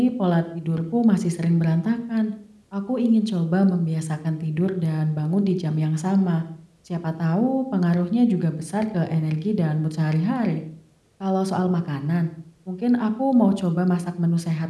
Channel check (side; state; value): both; identical; correlation 1.00